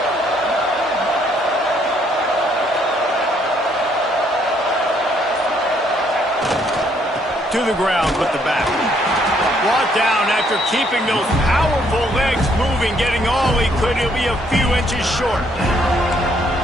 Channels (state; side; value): normal; both; correlation 0.68